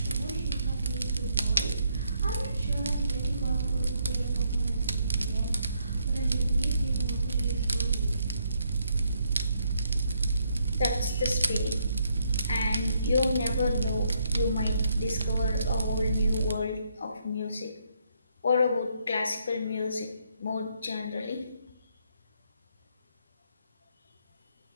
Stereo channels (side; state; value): both; inverted; correlation -0.74